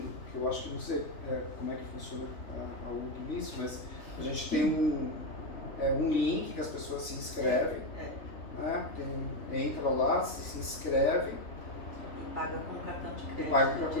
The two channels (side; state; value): right; late; 3.5 ms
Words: que eu acho que não sei como é que funciona a UG nisso, mas a gente tem um link que as pessoas se inscrevem, entra lá, se inscreve E paga com cartão de crédito. e paga com